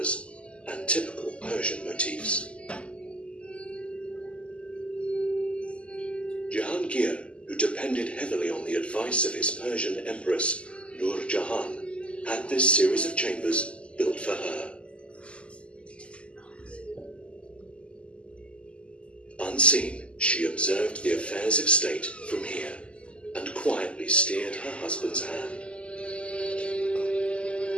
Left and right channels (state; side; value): late; right; 0.055 ms